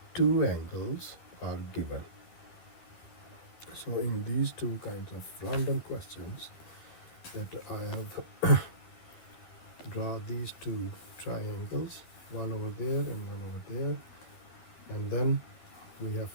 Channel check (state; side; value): late; right; 12 ms